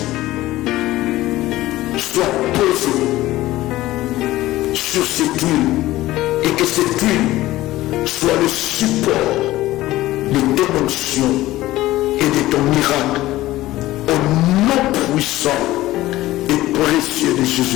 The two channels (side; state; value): right; quieter; 16.6 dB